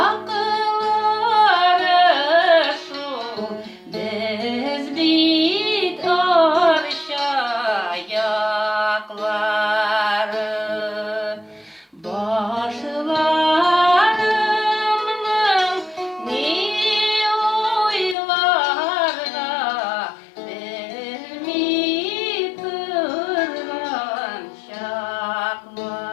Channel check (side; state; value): right; drops out; at 18.2 s